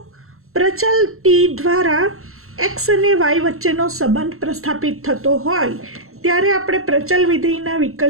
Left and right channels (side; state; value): left; late; 0.62 ms